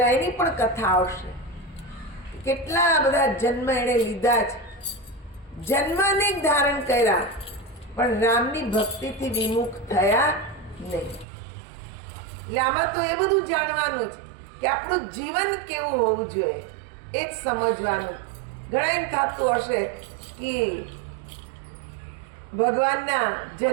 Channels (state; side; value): drops out; left; at 11.2 s